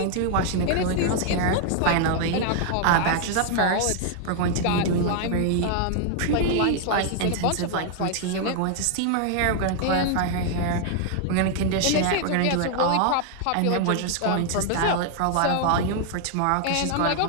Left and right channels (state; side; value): different; both; correlation 0.00